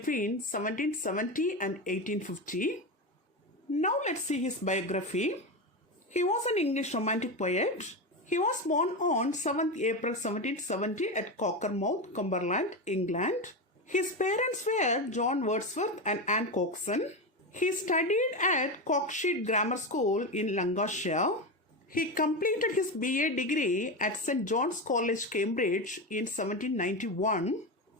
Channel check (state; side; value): normal; both; correlation 0.17